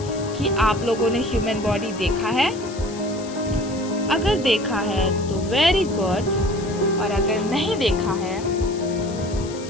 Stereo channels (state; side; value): noise; left; hiss, 17 dB below the sound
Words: कि आप लोगों ने ह्यूमन बॉडी देखा है? अगर देखा है तो वेरी गुड, और अगर नहीं देखा है